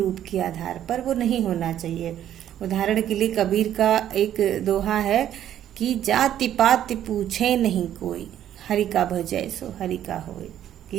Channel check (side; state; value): left; quieter; 11.1 dB